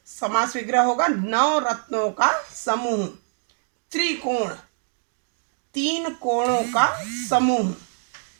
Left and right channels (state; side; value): silent; left; digital silence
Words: समास विग्रह होगा नौ रत्नों का समूह। त्रिकोण, तीन कोणों का समूह।